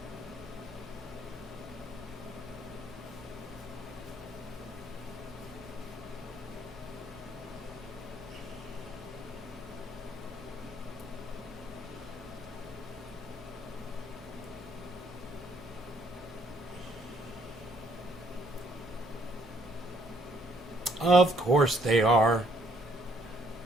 Of course they are.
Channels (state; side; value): normal; both; correlation 0.66